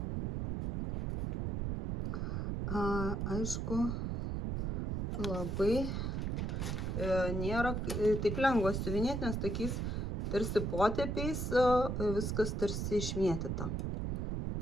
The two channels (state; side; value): noise; right; rumble, 1 dB below the sound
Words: Aišku, labai nėra taip lengva siuvinėti, nes tokiais tarsi potėpiais viskas tarsi išmėtyta.